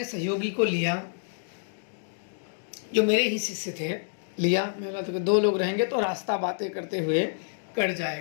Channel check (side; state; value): right; silent; digital silence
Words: सहयोगी को लिया जो मेरे ही शिष्य थे, लिया। मैं बोला तो 2 लोग रहेंगे तो रास्ता बातें करते हुए कट